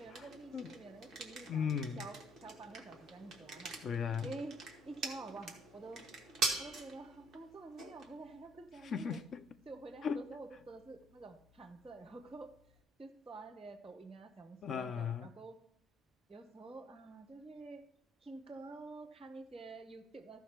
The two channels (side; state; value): both; normal; correlation 0.64